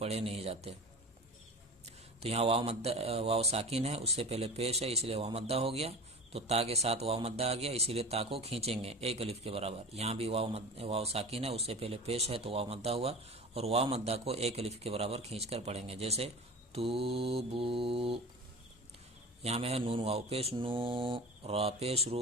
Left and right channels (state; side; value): normal; both; correlation 0.33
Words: نہیں جاتے. تو یہاں واو ساکن ہے، اس سے پہلے پیش ہے، اس لیے واو مدہ ہو گیا. تو تا کے ساتھ واو مدہ آ گیا، اسی لیے تا کو کھینچیں گے ایک الف کے برابر. یہاں بھی واو ساکن ہے، اس سے پہلے پیش ہے تو واو مدہ ہوا، اور واو مدہ کو ایک الف کے برابر کھینچ کر پڑھیں گے. جیسے توبو، یہاں میں ہے نون واو پیش نو، را پیش